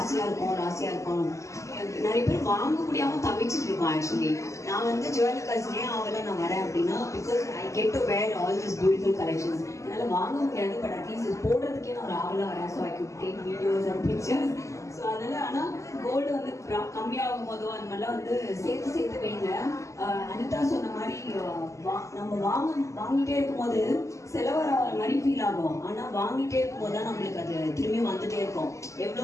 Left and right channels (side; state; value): right; late; 0.15 ms